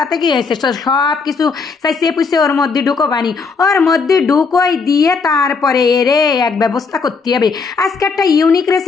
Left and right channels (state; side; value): quieter; right; 4.9 dB